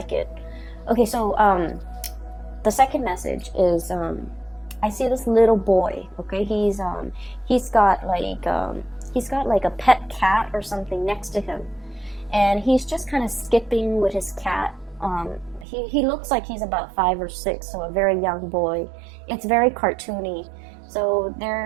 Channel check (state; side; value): drops out; left; at 15.7 s